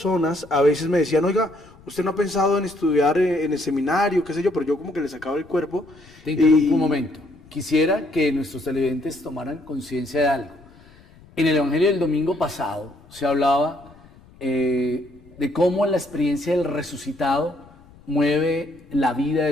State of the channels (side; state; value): left; noise; rumble, 25 dB below the sound